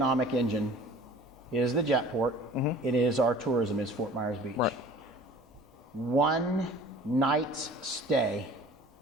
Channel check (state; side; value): normal; both; correlation 0.45